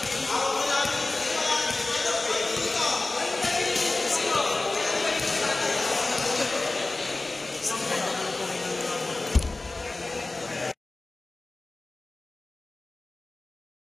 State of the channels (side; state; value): right; quieter; 3.2 dB